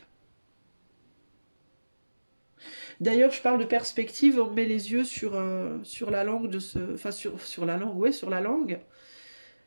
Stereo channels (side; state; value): both; inverted; correlation -1.00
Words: D'ailleurs, je parle de perspective, on met les yeux sur la langue de ce... Enfin, sur la langue, ouais, sur la langue.